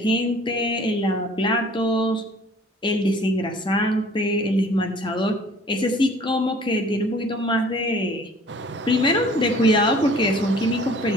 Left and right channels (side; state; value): both; normal; correlation 0.51